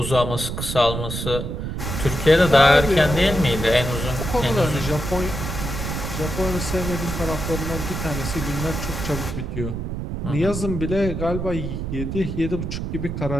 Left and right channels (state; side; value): noise; right; rumble, 4 dB below the sound